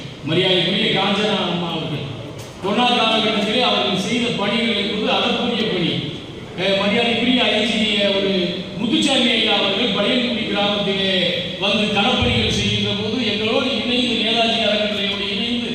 மரியாதைக்குரிய காஞ்சனா அம்மா அவர்கள் கொரோனா காலகட்டத்திலே அவர்கள் செய்த பணிகள் என்பது அதற்குரிய பணி. மரியாதைக்குரிய ஐஜி ஒரு முத்துச்சாமி ஐயா அவர்கள் பழையங்குடி கிராமத்திலே வந்து களப்பணிகள் செய்கின்ற போது எங்களோடு இணைந்து நேதாஜி அறக்கட்டளையோடு இணைந்து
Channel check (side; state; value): both; identical; correlation 1.00